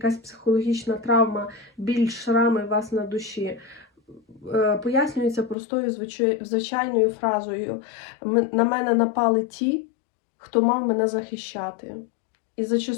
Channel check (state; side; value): drops out; right; at 5.6 s